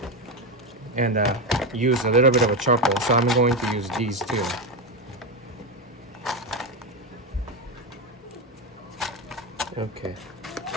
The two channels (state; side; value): normal; both; correlation 0.12